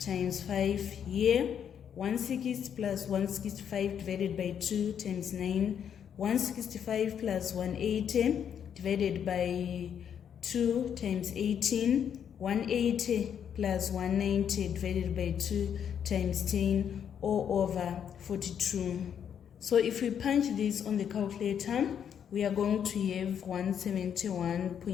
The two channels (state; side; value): quieter; right; 8.4 dB